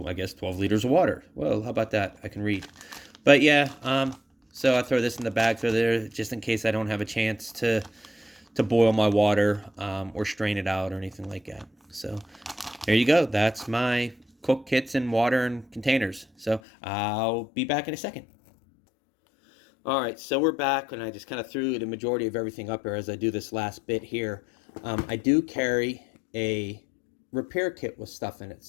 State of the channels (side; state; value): right; drops out; at 16.6 s